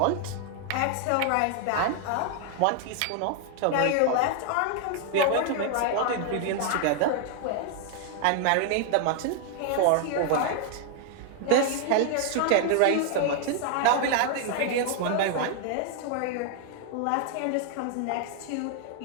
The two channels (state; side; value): different; both; correlation 0.00